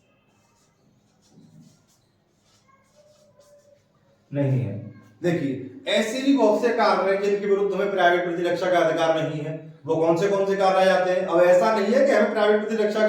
नहीं है। देखिए ऐसे भी बहुत से कार्य हैं जिनके विरुद्ध हमें प्राइवेट प्रतिरक्षा का अधिकार नहीं है। वो कौन से कार्य आ जाते हैं? अब ऐसा नहीं है कि हमें प्राइवेट प्रतिरक्षा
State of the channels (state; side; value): identical; both; correlation 1.00